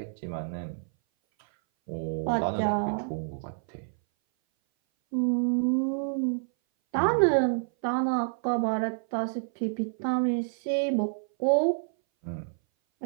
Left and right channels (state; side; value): silent; left; 58 dB below the other